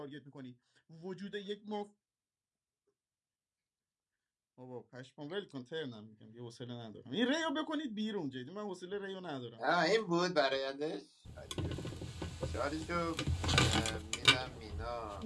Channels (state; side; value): identical; both; correlation 1.00